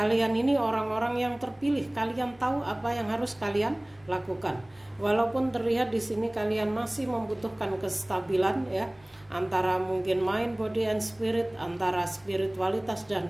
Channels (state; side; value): noise; left; rumble, 30 dB below the sound